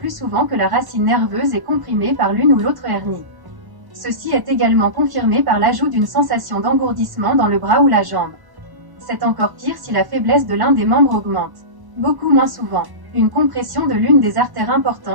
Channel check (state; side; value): late; left; 1.1 ms